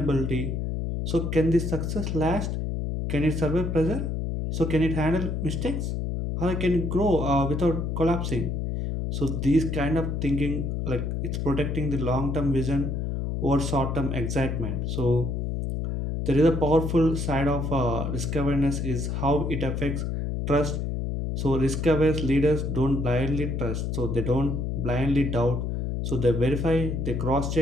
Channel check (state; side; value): noise; left; hum, 2 dB below the sound